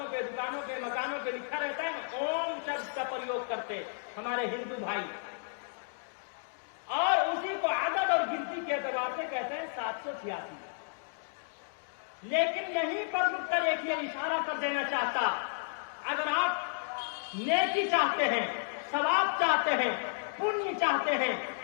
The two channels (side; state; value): right; silent; digital silence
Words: پہ، دکانوں پہ، مکانوں پہ لکھا رہتا ہے اوم شبد کا پریوگ کرتے ہمارے ہندو بھائی، اور اسی کو عدد اور گنتی کے اعتبار سے کہتے ہیں 786۔ لیکن یہیں پر رک کر ایک یہ اشارہ کر دینا چاہتا، اگر آپ نیکی چاہتے ہیں، ثواب چاہتے ہیں، پنیہ چاہتے ہیں